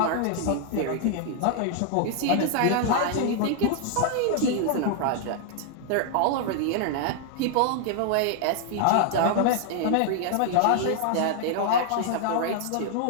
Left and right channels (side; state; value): both; different; correlation 0.00